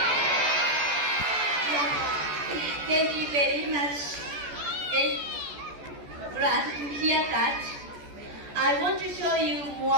Yeah. Thank you very much. Glad to hear that. I want to show you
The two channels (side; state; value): left; late; 14 ms